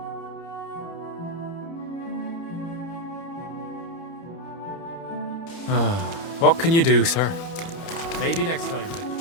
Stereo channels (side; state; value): right; late; 30 ms